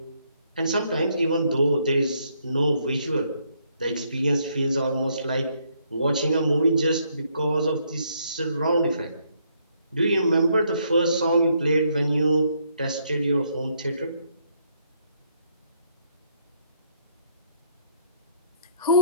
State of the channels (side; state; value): both; inverted; correlation -0.71